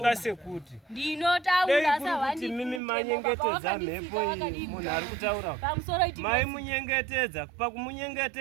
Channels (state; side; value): drops out; left; at 2.8 s